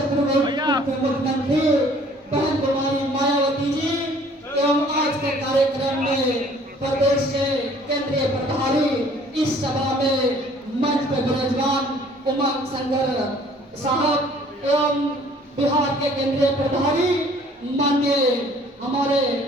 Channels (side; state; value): both; normal; correlation 0.55